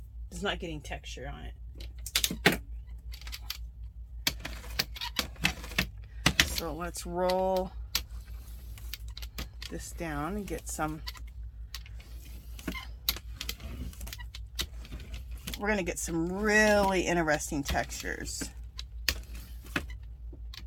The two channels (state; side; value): identical; both; correlation 1.00